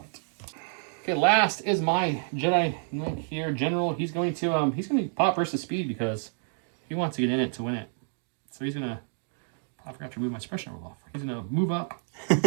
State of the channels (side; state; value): left; silent; 57 dB below the other